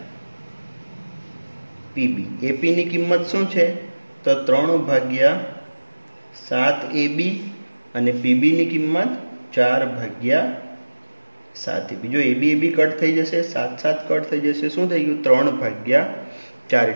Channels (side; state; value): both; inverted; correlation -1.00